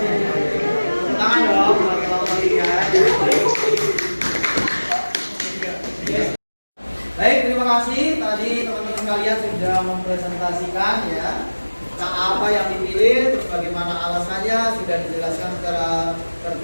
Tangan dong bagi kelompok 3. Baik, terima kasih. Tadi teman-teman kalian sudah mempresentasikan ya apa yang dipilih, terus bagaimana alasannya sudah dijelaskan secara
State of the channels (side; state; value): both; inverted; correlation -1.00